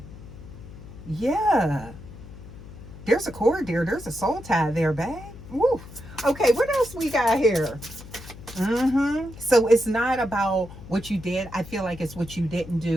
Yeah. There's a cord there. There's a soul tie there, babe. Woo. Okay, what else we got here? So it's not about what you did. I feel like it's what you didn't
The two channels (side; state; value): left; noise; hum, 16 dB below the sound